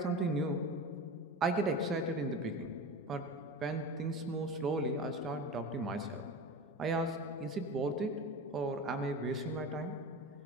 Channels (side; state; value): both; normal; correlation 0.30